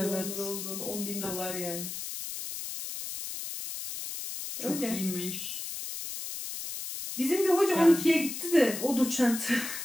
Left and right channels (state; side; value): noise; left; hiss, 7 dB below the sound